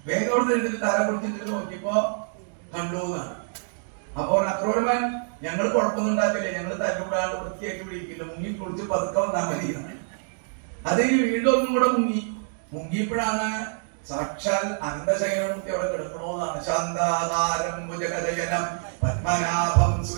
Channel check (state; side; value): silent; left; digital silence